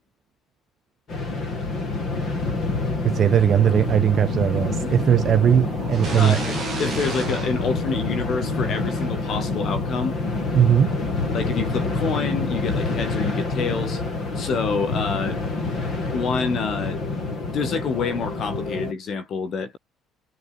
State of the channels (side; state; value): both; normal; correlation 0.55